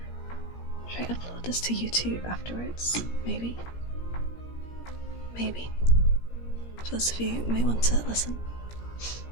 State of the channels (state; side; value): late; right; 17 ms